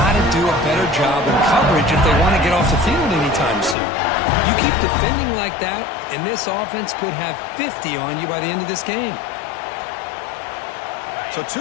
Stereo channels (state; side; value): drops out; right; at 3.8 s